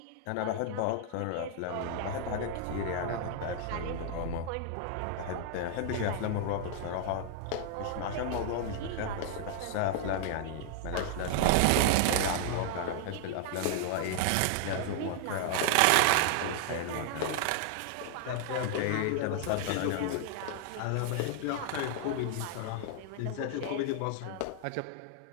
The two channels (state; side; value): different; both; correlation 0.00